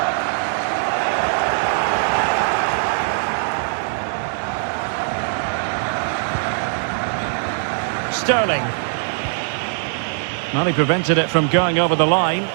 Sterling. Well, he prevented it from going over the line.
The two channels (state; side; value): silent; left; 60 dB below the other